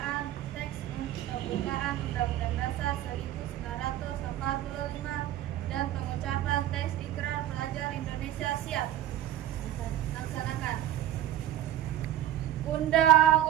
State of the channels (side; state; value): left; quieter; 12.8 dB